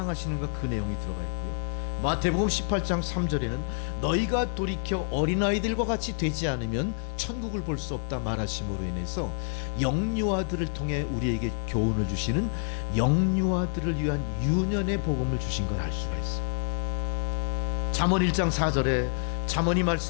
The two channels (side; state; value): right; silent; 59 dB below the other